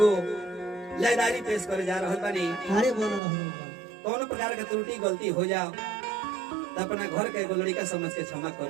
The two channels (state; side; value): drops out; left; at 3.2 s